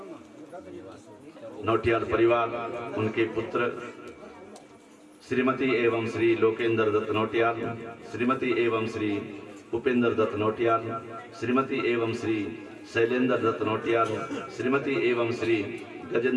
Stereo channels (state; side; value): identical; both; correlation 1.00